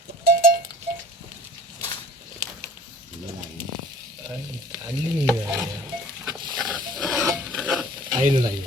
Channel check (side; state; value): both; normal; correlation 0.50